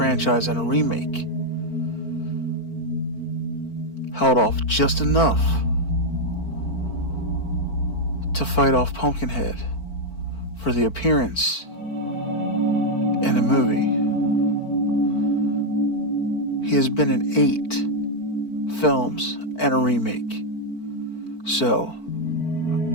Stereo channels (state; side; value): late; right; 4.5 ms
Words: and a remake held off just enough to fight off Pumpkinhead for the appearance in a movie. He has been in 8 films and a remake. So,